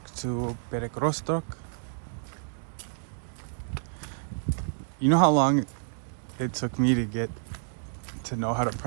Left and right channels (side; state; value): left; silent; digital silence